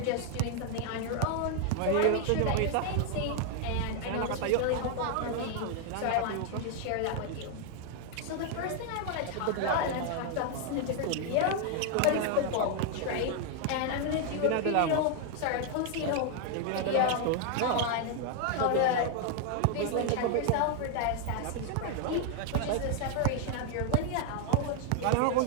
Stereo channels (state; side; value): different; both; correlation 0.00